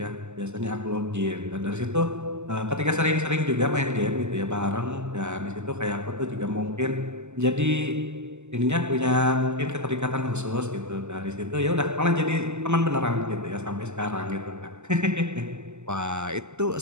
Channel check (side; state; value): left; late; 0.83 ms